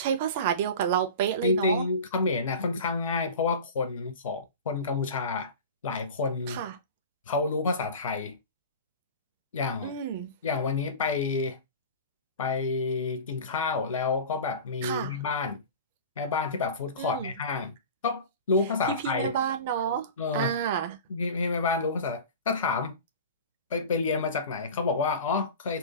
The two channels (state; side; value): inverted; both; correlation -0.33